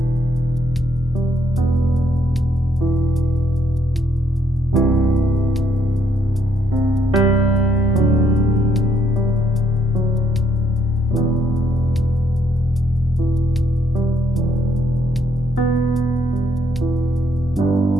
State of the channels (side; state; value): both; normal; correlation 0.71